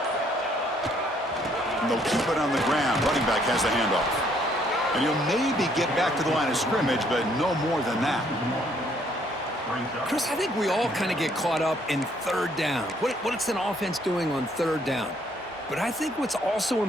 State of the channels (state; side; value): normal; both; correlation 0.66